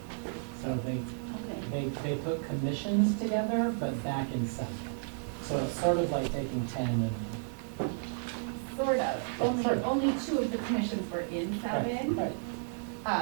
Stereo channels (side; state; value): left; silent; 56 dB below the other